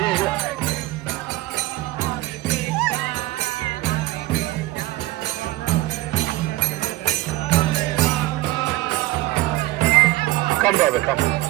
Come, brother, come.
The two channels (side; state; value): left; quieter; 18.1 dB